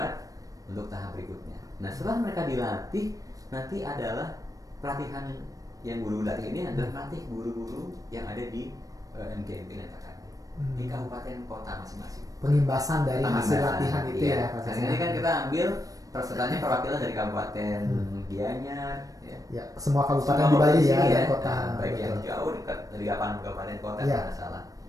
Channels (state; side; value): late; left; 0.17 ms